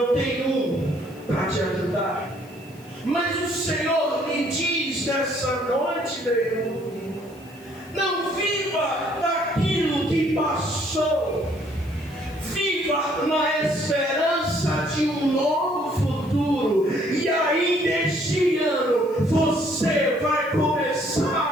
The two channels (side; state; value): left; noise; hiss, 27 dB below the sound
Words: tem um para te ajudar. Mas o Senhor lhe diz nessa noite, meu irmão, não viva daquilo que passou. Viva na esperança de um novo futuro. E ainda este ano você vai